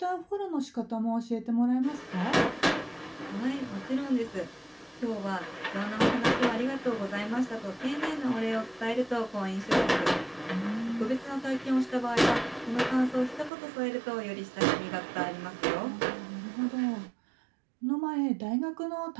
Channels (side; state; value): left; drops out; at 13.5 s